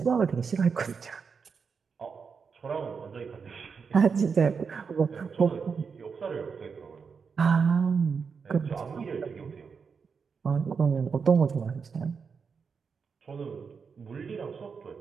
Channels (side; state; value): left; quieter; 5.7 dB